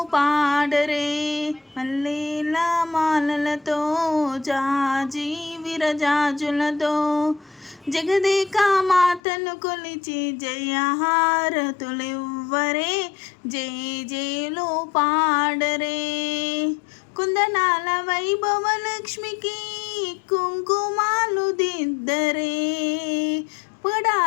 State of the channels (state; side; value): drops out; right; at 9.2 s